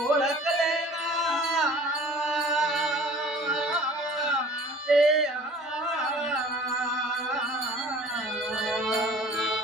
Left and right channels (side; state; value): both; normal; correlation 0.48